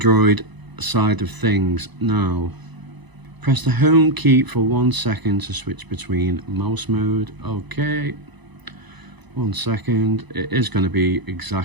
side of things now. Press the home key for 1 second to switch between mouse mode. Okay, 1 second. It is going to be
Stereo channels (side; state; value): left; late; 1.0 ms